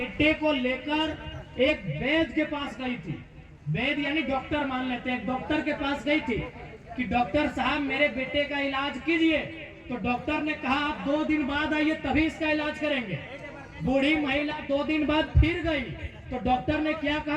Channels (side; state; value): both; identical; correlation 1.00